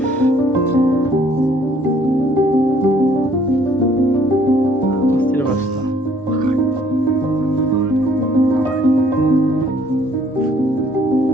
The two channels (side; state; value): both; normal; correlation 0.61